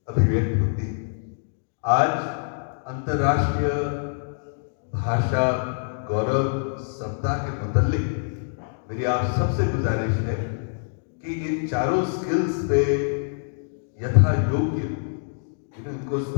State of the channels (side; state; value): right; silent; digital silence